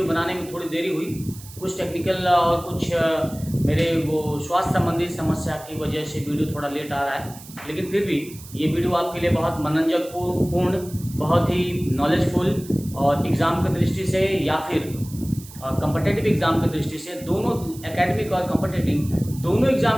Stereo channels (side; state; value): right; noise; hiss, 18 dB below the sound